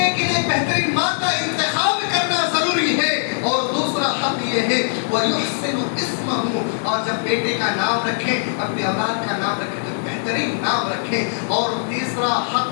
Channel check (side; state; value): right; silent; 65 dB below the other